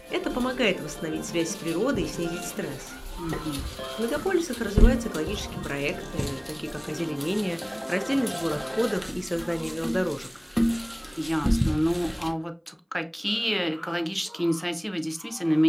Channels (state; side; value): identical; both; correlation 1.00